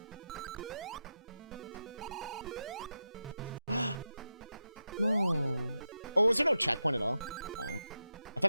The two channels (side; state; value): both; inverted; correlation -0.88